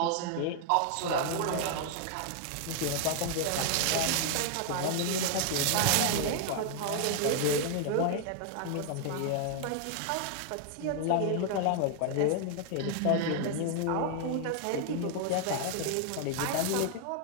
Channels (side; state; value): both; different; correlation 0.00